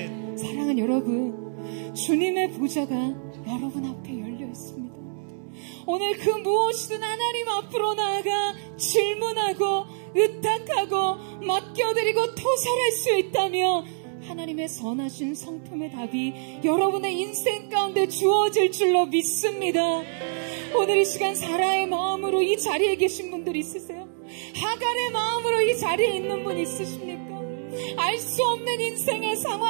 사랑하는 여러분, 주님의 보좌가 여러분 앞에 열려 있습니다. 오늘 그 무엇이든 하나님 앞으로 나아가 질문하고 의탁하고 맡겨드리고 토설할 수 있다며 하나님의 선하신 성품의 답이 여러분의 인생 가운데 주어질 줄로 믿습니다. 오늘 이 시간 사라의 마음으로 이 자리에 계신 분들 있으세요? 하갈의 마음으로 이 자리에 있는 분 있으십니까? 알 수 없는 인생의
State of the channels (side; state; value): left; silent; digital silence